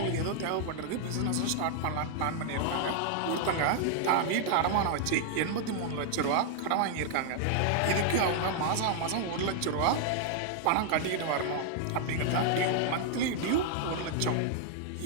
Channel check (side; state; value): both; different; correlation 0.00